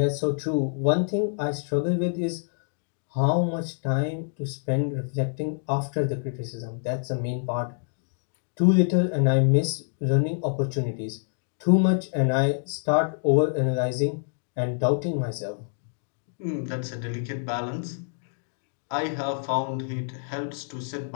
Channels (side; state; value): right; silent; digital silence